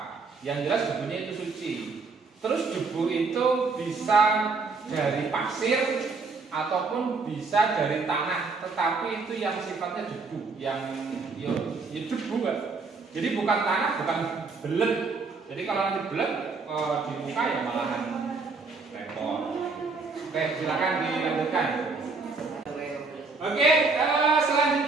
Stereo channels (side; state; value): left; quieter; 4.3 dB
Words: Yang jelas debunya itu suci. Terus debu itu bisa dari pasir ataupun bisa dari tanah, tetapi itu yang sifatnya debu, yang ya debu kan. Jadi bukan tanah, bukan belet. Jadi kalau nanti belet di muka ya malahan repot. Oke, silakan dilanjutkan. Oke,